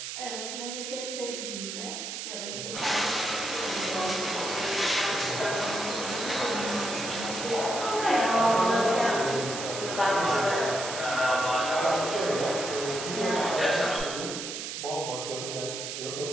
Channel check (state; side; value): noise; right; hiss, 6 dB below the sound